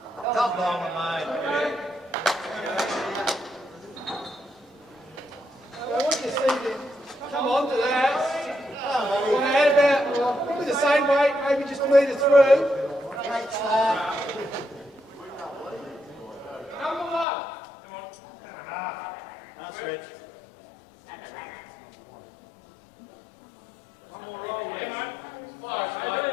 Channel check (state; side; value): drops out; right; at 17.2 s